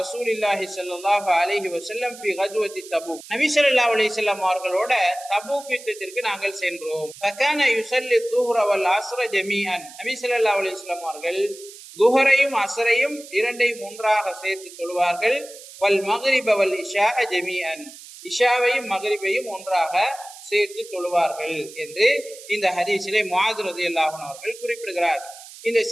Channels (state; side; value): noise; right; hiss, 17 dB below the sound